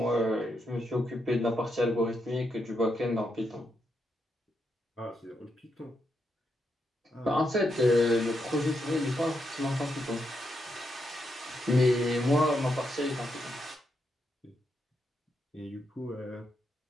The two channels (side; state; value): both; normal; correlation 0.82